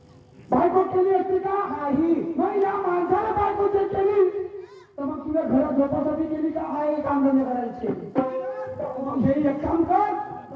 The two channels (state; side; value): identical; both; correlation 1.00